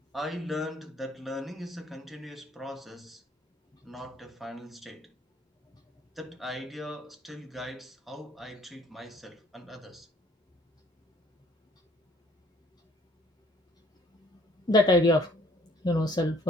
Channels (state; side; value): normal; both; correlation 0.59